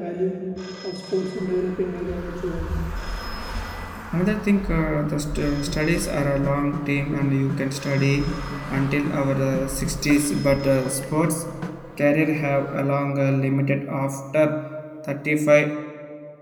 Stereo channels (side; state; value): both; identical; correlation 1.00